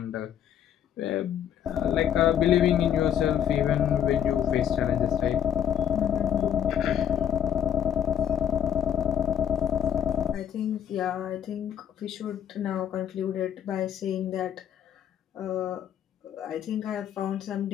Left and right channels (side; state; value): right; quieter; 9.3 dB